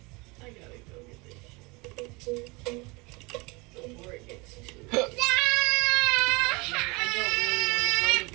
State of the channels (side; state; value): left; quieter; 26.3 dB